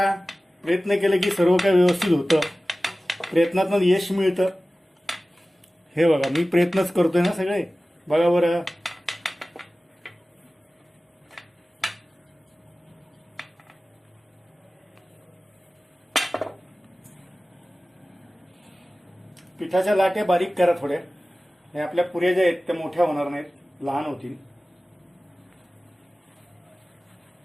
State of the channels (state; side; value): normal; both; correlation 0.97